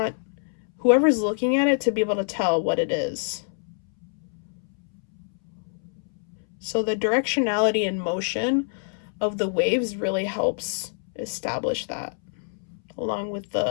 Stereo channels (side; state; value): right; silent; 61 dB below the other